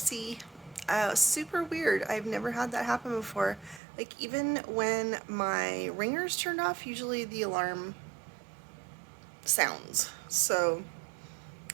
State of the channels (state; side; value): drops out; left; at 3.8 s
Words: Super weird. I've never had that happen before. Like, even when my ringer's turned off, usually the alarm sounds. So